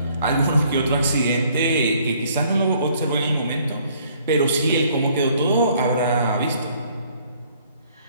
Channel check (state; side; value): inverted; both; correlation -0.62